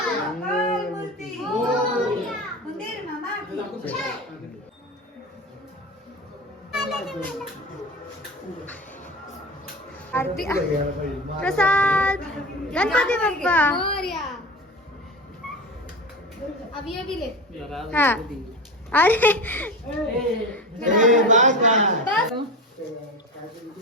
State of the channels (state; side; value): normal; both; correlation 0.27